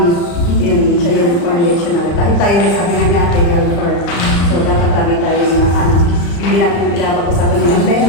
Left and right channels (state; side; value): late; right; 35 ms